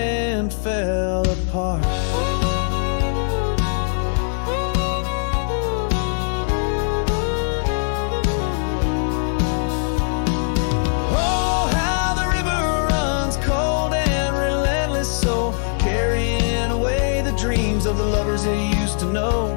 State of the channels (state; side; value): silent; right; 65 dB below the other